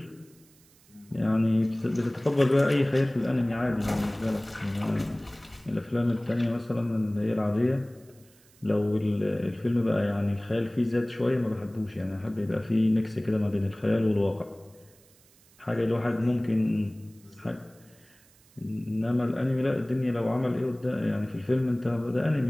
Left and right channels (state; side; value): noise; right; hiss, 29 dB below the sound